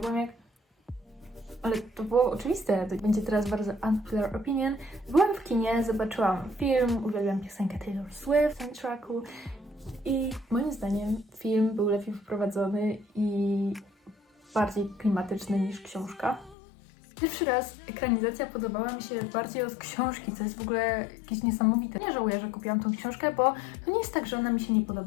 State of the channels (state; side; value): drops out; right; at 16.6 s